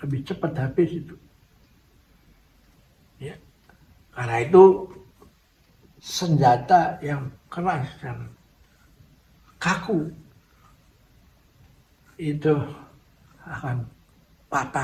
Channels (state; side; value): identical; both; correlation 1.00